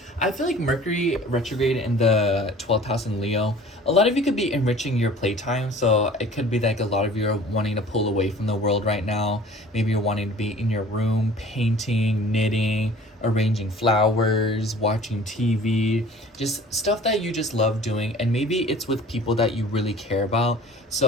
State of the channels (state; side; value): normal; both; correlation 0.47